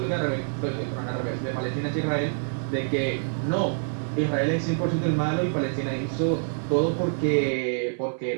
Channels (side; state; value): left; silent; 61 dB below the other